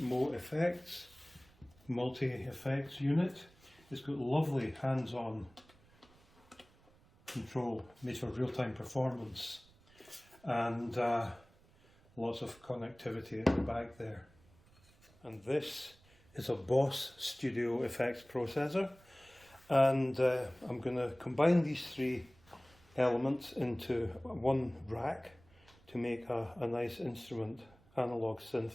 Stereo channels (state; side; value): noise; right; rumble, 28 dB below the sound